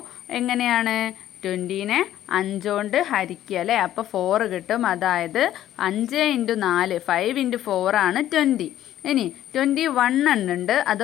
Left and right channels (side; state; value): right; quieter; 12.5 dB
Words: എങ്ങനെയാണ്? 20നെ 5 കൊണ്ട് ഹരിക്കുക അല്ലേ. അപ്പോൾ 4 കിട്ടും. അതായത് 5 × 4 5 × 4 ആണ് 20. ഇനി 21 എണ്ണുണ്ട്. അത്